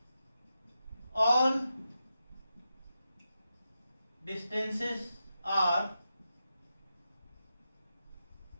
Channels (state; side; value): inverted; both; correlation -0.88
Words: all distances are